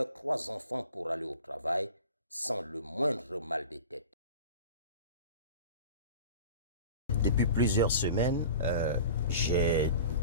3 enfants pour aller au travail, sans le moindre mal de tête. Depuis plusieurs semaines, j'ai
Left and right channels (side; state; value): both; inverted; correlation -0.38